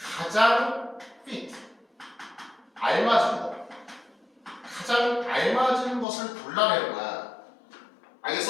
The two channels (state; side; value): drops out; right; at 6.1 s